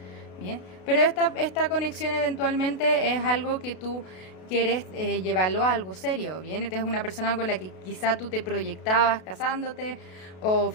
Bien, pero esta conexión eventualmente es algo que tú quieres llevarlo a algo serio, ¿bien? Esta es una persona con la que quizá tú te proyectabas casándote o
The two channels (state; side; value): late; right; 32 ms